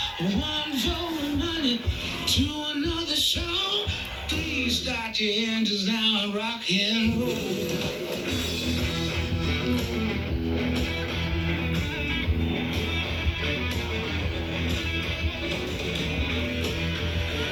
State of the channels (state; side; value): identical; both; correlation 1.00